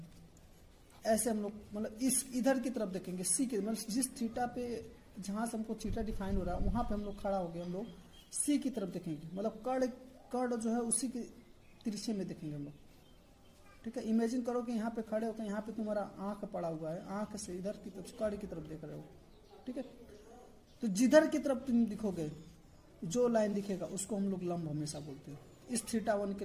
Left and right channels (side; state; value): both; identical; correlation 1.00